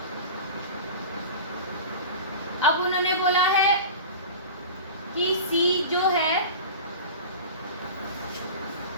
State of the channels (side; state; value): both; inverted; correlation -0.33